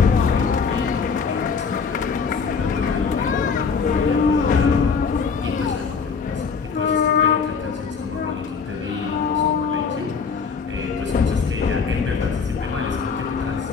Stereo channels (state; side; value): quieter; right; 5.5 dB